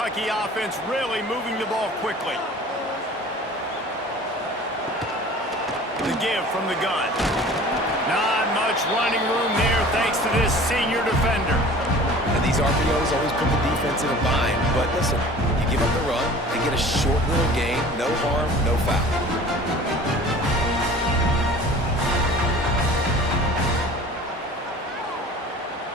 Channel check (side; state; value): both; normal; correlation 0.44